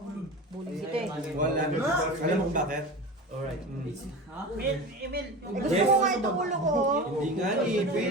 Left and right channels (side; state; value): both; normal; correlation 0.30